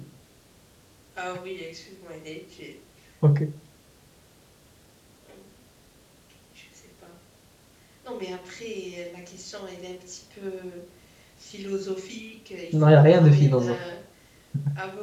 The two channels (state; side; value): identical; both; correlation 1.00